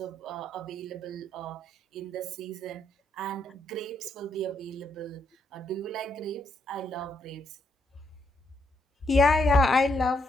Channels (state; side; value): normal; both; correlation 0.76